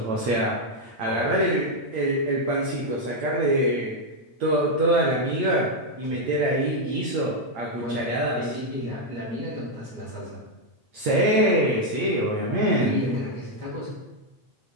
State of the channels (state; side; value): late; left; 8.7 ms